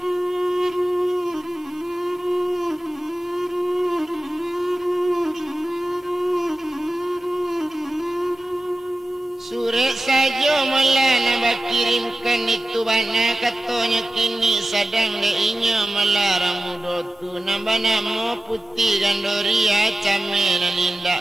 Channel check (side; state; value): both; normal; correlation 0.95